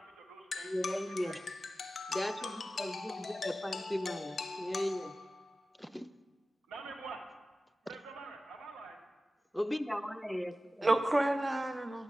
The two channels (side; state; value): both; normal; correlation 0.95